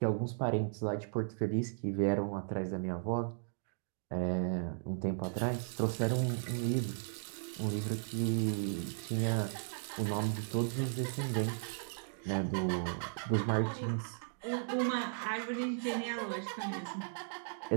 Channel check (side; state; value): left; silent; digital silence